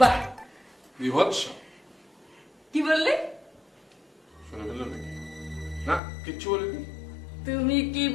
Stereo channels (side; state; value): right; drops out; at 6.0 s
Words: বাহ, বিভৎস। কি বললে? শুনে ফেললো নাকি? না, কিচ্ছু বলিনি। তুমি কি